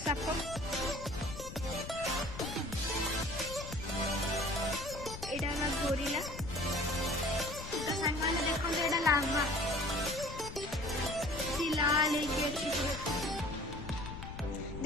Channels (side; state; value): left; noise; rumble, 10 dB below the sound